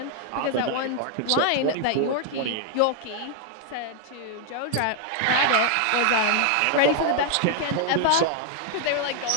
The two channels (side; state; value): both; different; correlation 0.00